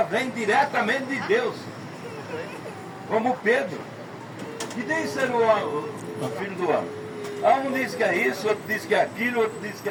vem diretamente de Deus. Como Pedro. Que diz ser o filho do homem? Um diz que é isso, outro diz que é aquilo, outro diz que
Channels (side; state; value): both; identical; correlation 1.00